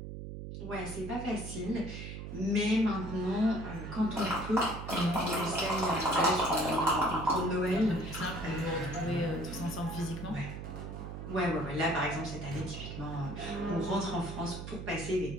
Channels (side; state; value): right; noise; hum, 8 dB below the sound